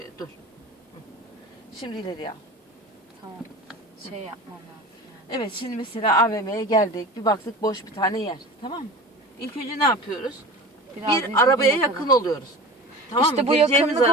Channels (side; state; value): both; normal; correlation 0.35